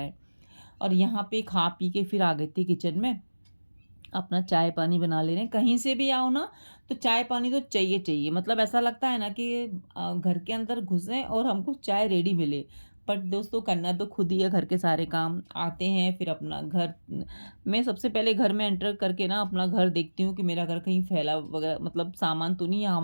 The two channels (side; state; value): both; inverted; correlation -1.00